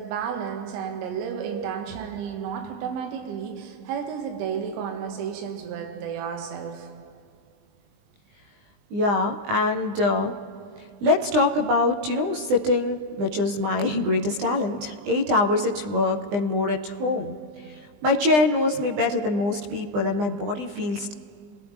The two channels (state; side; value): late; left; 20 ms